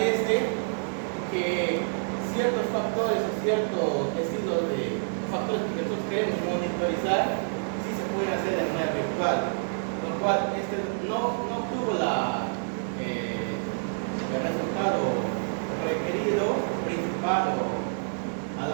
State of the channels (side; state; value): left; silent; digital silence